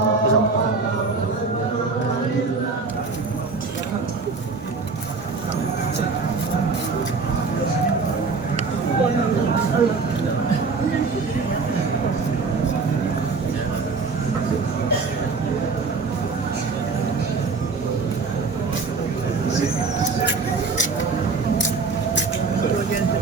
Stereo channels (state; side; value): quieter; left; 4.4 dB